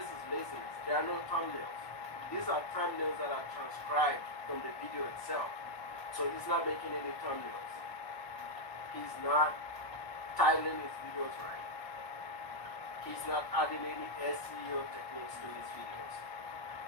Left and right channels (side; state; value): right; late; 1.3 ms